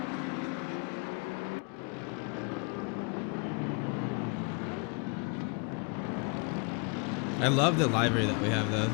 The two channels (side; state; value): right; quieter; 36.2 dB